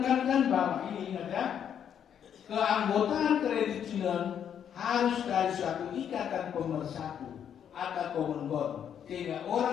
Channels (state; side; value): quieter; right; 8.8 dB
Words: bahwa ini ingat ya, keanggotaan kredit union harus dari suatu ikatan pemersatu atau common bond, sehingga